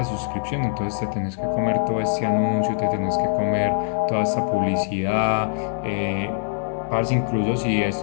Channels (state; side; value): silent; right; 63 dB below the other